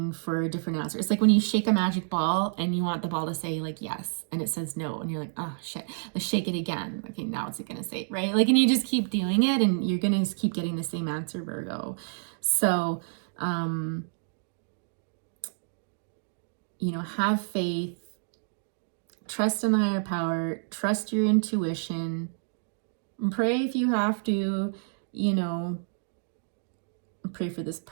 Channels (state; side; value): silent; left; digital silence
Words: for a different answer. It's like when you shake a magic ball and you want the ball to say like yes, and it says no, and you're like, oh shit, let's shake it again. Okay, now it's gonna say, right? Like, and you just keep doing it, and you're gonna just keep getting the same answer, Virgo. So, you know, have faith, trust in the higher power, trust your intuition, pray if you have to, you know, pray for this